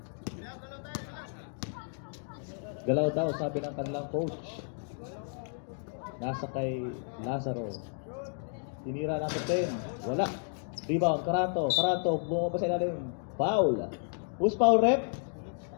Galaw daw, sabi ng kanilang coach. Nasa kay Lazaro. Tinira natin 10. Wala. Rebound, Caranto. Caranto, bumaba sa ilalim. Foul. Who's foul, rep?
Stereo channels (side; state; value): right; silent; 56 dB below the other